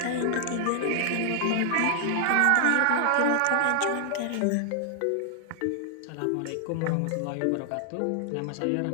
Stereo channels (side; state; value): both; different; correlation 0.00